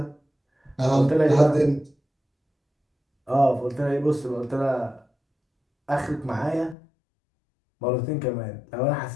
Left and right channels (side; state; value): right; drops out; at 6.8 s